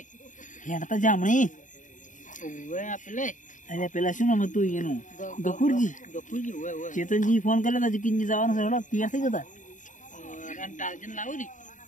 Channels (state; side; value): late; right; 0.37 ms